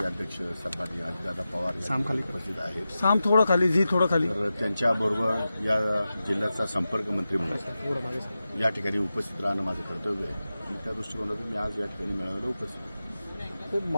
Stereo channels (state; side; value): inverted; both; correlation -0.93